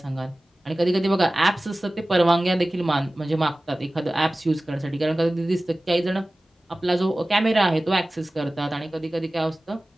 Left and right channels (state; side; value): normal; both; correlation 0.97